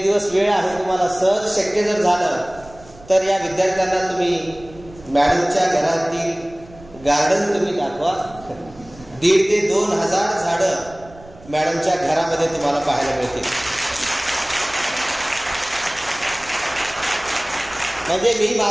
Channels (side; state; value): right; noise; rumble, 22 dB below the sound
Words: दिवस वेळ आहे तुम्हाला, सहज शक्य जर झालं तर या विद्यार्थ्यांना तुम्ही मॅडमच्या घरातील गार्डन तुम्ही दाखवा. 1,500 ते 2,000 झाडं मॅडमच्या घरामध्ये तुम्हाला पाहायला मिळतील. म्हणजे मी